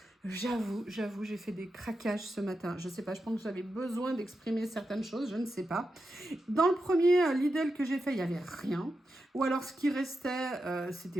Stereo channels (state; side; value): normal; both; correlation 0.88